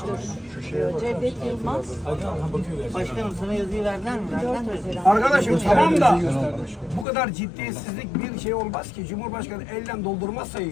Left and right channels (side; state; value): right; drops out; at 7.1 s